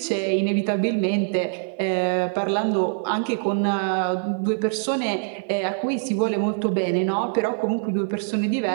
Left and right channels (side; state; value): left; silent; 63 dB below the other